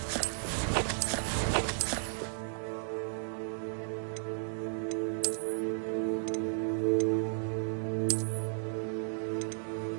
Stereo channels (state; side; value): silent; left; digital silence